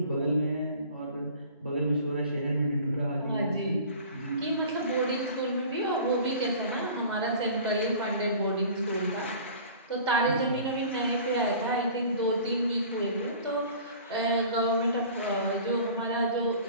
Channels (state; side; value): inverted; both; correlation -0.44